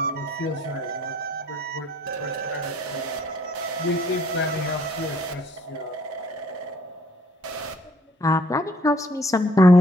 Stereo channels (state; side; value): normal; both; correlation 0.61